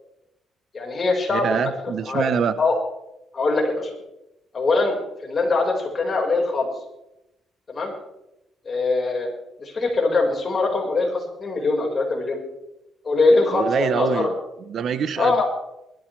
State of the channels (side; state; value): both; normal; correlation 0.81